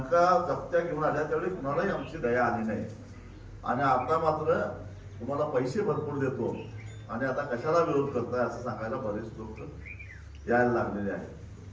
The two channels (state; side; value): identical; both; correlation 1.00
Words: जप्त्या घेऊन आल्या, त्यावेळी कुणालाही आमची दया आली नाही. आणि आता मात्र तुम्हाला पैसे भरपूर देतो आणि आता कशाला विरोध करताय असं सांगायला बरेच लोक यायला लागलेले आहेत.